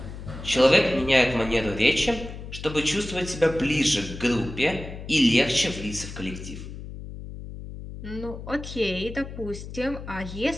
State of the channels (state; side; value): noise; left; hum, 11 dB below the sound